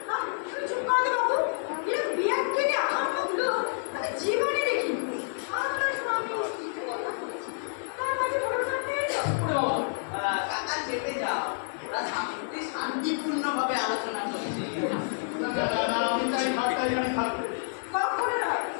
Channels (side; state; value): right; silent; 56 dB below the other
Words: জীবনে দেখিনি আপনার স্বামী তার মাঝে ভরসা পেয়ে যাও। কাকা চেপে যাও, ওরা শান্তিপূর্ণভাবে আলোচনা করছে। না না না, আমি চাই খাটটাই আমি থাকবে। কখনো নয়,